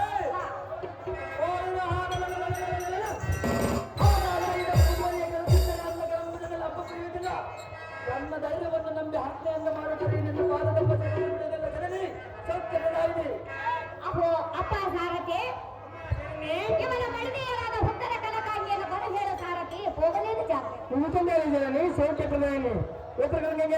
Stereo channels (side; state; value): both; identical; correlation 1.00